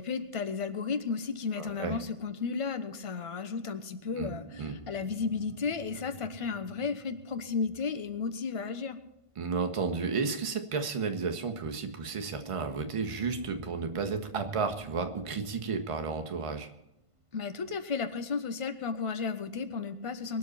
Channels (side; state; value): left; late; 1.5 ms